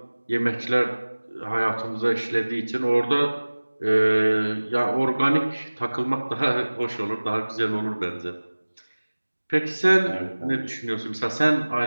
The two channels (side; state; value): both; inverted; correlation -1.00